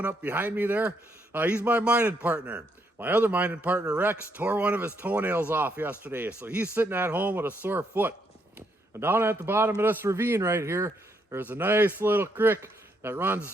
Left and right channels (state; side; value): normal; both; correlation 0.75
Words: up behind me there. He's my mining partner. My other mining partner, Rex, tore one of his toenails off yesterday. So he's sitting at home with a sore foot. And down at the bottom of this ravine right here, there's a nice little creek that